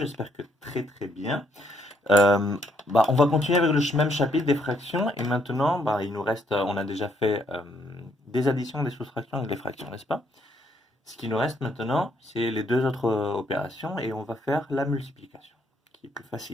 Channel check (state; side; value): normal; both; correlation 0.71